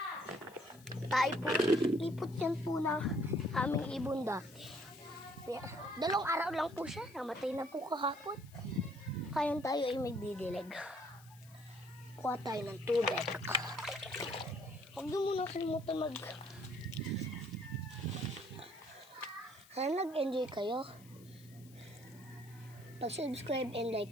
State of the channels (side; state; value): left; noise; hiss, 24 dB below the sound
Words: Tayo po, lipot yan po ng aming ibon dati. 2 araw lang po siya, namatay na po kahapon. Kayon tayo ay magdidilig. Kuha tayo ng tubig. Huwag nyo muna kalimutan Sana nag-enjoy kayo. Pag-subscribe and